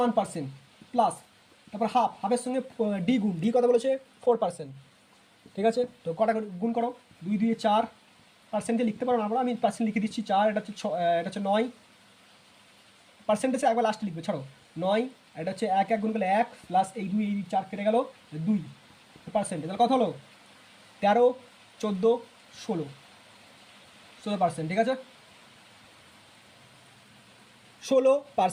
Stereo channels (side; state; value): both; identical; correlation 1.00